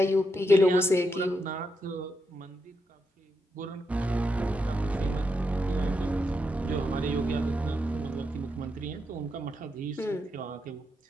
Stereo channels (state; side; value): normal; both; correlation 0.83